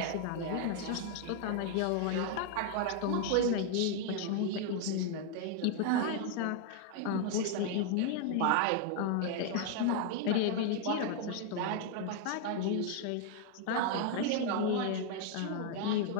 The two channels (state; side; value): different; both; correlation 0.00